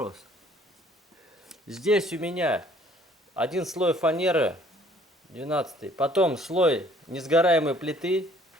Здесь у меня один слой фанеры, 12-й, потом слой несгораемой плиты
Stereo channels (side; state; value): both; normal; correlation 0.58